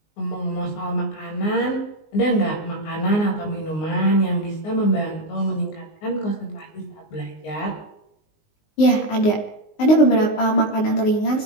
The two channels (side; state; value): right; late; 19 ms